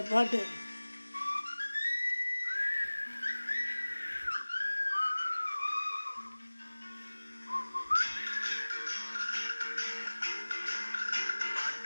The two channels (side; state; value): both; inverted; correlation -1.00